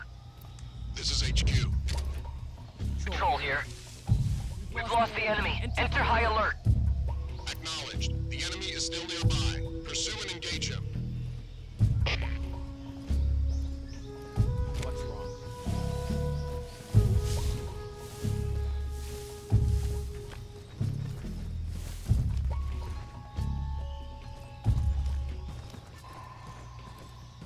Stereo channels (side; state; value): both; identical; correlation 1.00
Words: This is HQ. Patrol here. We've lost the enemy. Enter high alert. Acknowledged. The enemy is still nearby. Pursue and engage him.